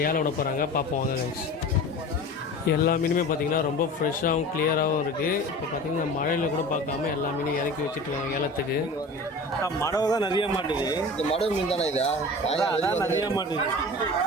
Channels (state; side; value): normal; both; correlation 0.36